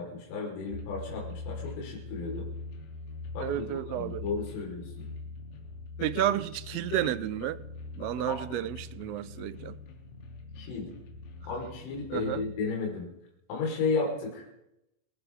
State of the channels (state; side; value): late; right; 23 ms